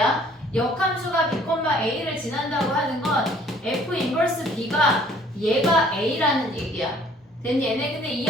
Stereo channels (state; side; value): normal; both; correlation 0.57